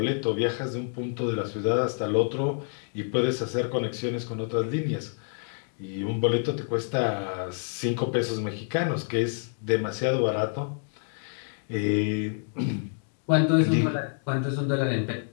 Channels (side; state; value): right; silent; 58 dB below the other